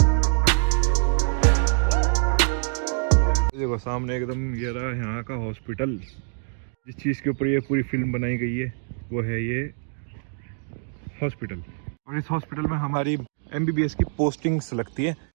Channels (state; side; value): silent; left; digital silence